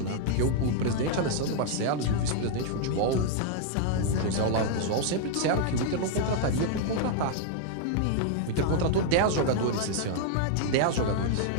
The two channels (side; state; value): both; different; correlation -0.01